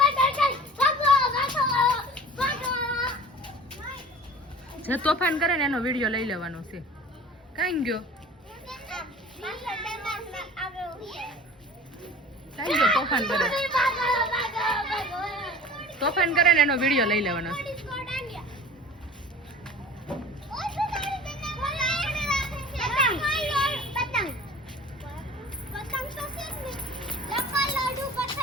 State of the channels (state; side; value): normal; both; correlation 0.41